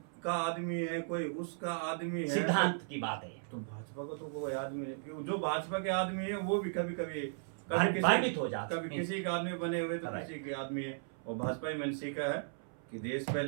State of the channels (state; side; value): silent; left; 54 dB below the other